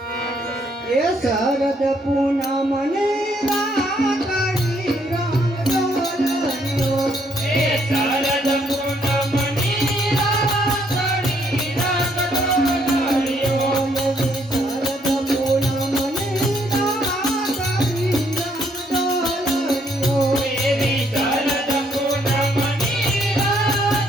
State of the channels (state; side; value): normal; both; correlation 0.70